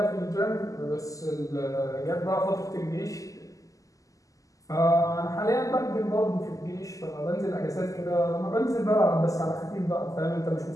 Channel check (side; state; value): right; late; 0.16 ms